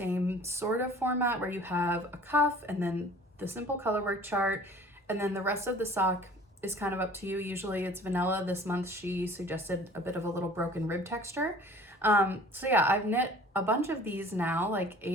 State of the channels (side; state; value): both; normal; correlation 0.48